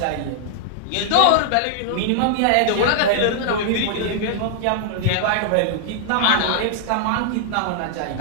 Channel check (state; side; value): different; both; correlation -0.01